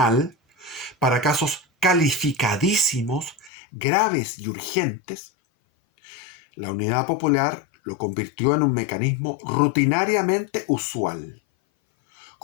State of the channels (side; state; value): right; drops out; at 3.5 s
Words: para casos calificadísimos, graves y urgentes, la Unidad Popular lo convirtió en un mecanismo rutinariamente usual,